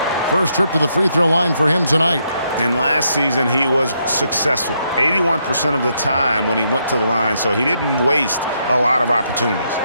First trip to the free throw line for him tonight. And last season, he was successful 81% of the time when he went to the line, so he didn't waste a lot of opportunities.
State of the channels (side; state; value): both; inverted; correlation -0.77